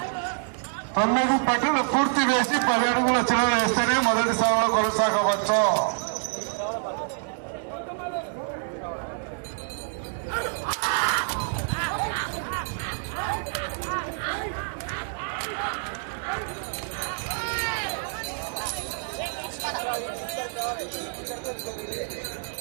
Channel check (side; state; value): left; silent; digital silence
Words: 9 పట్టులు పూర్తి వేసి 10 అడుగుల చిల్లర వేస్తేనే మొదటి స్థానంలో కొనసాగవచ్చు.